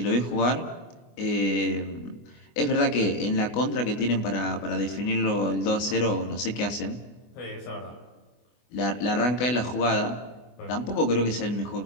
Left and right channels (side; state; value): right; late; 24 ms